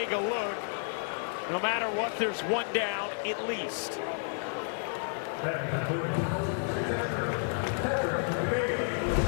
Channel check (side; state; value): right; silent; digital silence